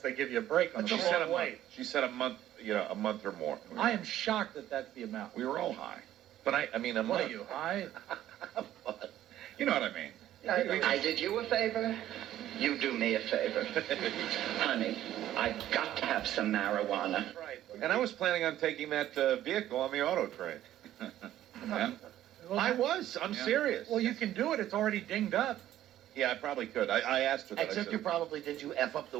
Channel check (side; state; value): left; quieter; 12.7 dB